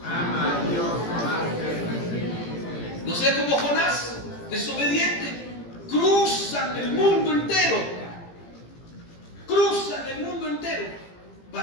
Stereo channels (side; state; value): right; late; 18 ms